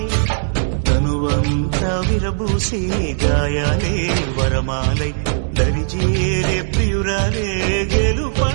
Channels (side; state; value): left; silent; digital silence